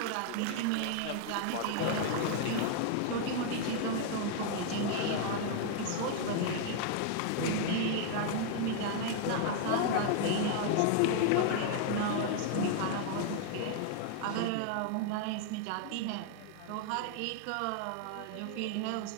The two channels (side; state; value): both; different; correlation 0.00